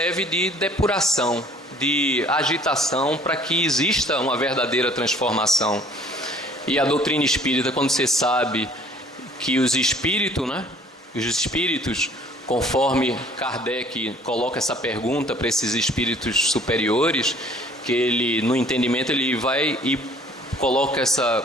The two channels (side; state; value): both; normal; correlation 0.55